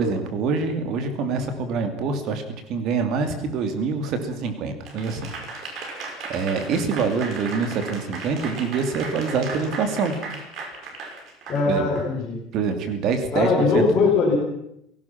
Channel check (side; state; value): both; normal; correlation 0.41